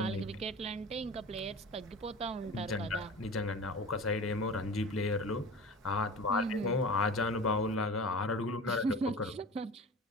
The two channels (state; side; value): normal; both; correlation 0.36